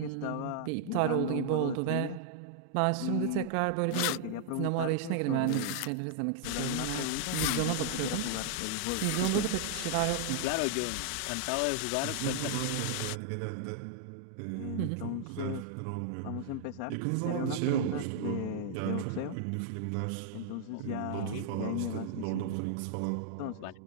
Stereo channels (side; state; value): both; different; correlation -0.01